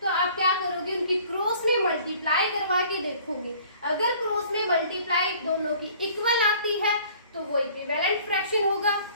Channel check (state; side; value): inverted; both; correlation -0.53